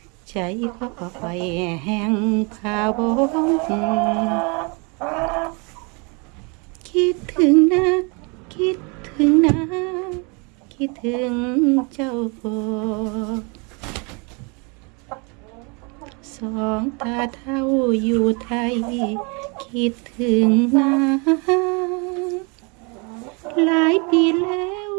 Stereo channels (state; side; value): quieter; left; 32.0 dB